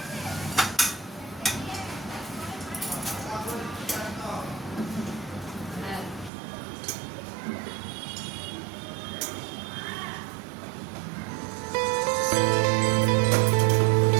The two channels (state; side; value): drops out; left; at 6.3 s